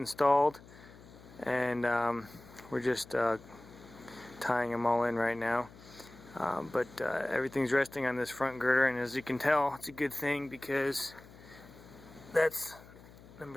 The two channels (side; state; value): left; noise; hum, 21 dB below the sound